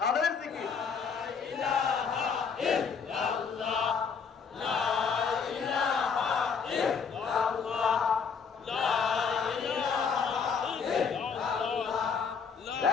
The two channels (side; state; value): right; quieter; 6.0 dB